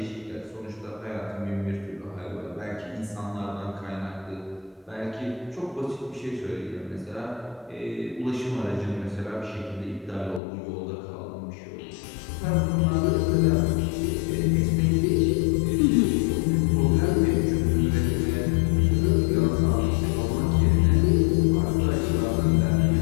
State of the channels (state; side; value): drops out; right; at 10.4 s